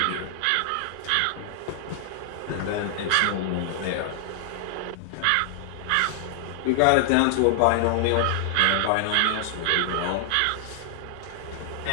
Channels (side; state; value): both; different; correlation 0.00